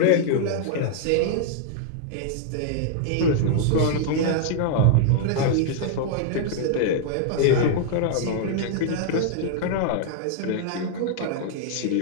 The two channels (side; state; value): both; different; correlation -0.01